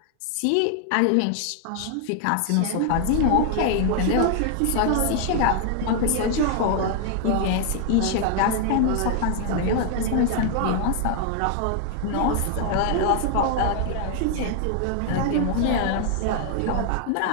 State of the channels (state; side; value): different; both; correlation 0.00